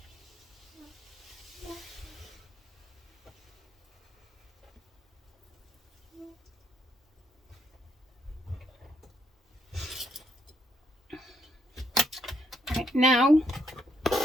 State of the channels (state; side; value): normal; both; correlation 0.75